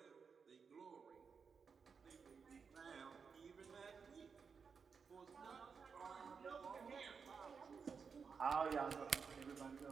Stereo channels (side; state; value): left; quieter; 5.7 dB